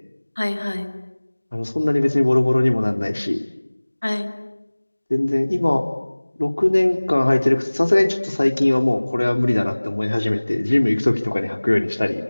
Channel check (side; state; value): both; inverted; correlation -1.00